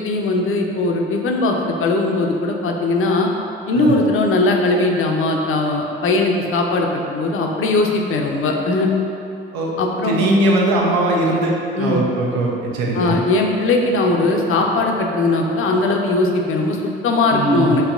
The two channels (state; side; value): normal; both; correlation 0.34